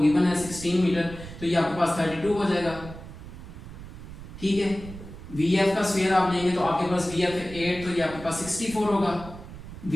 है 16 मीटर तो ये आपके पास 32 हो जाएगा। ठीक है, vf का स्क्वायर आप लेंगे तो आपके पास vf 8 तो ये आपके पास 64 होगा,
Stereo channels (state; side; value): noise; right; rumble, 13 dB below the sound